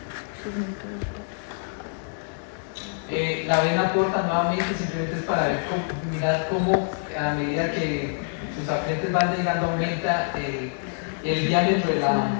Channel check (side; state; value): right; silent; digital silence